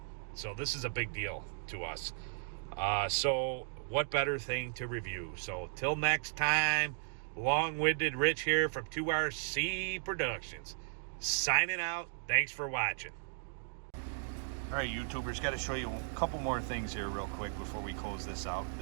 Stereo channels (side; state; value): left; silent; digital silence